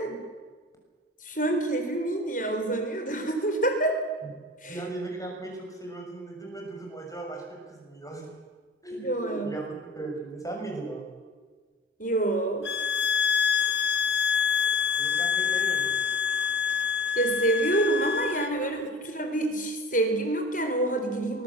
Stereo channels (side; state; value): both; normal; correlation 0.38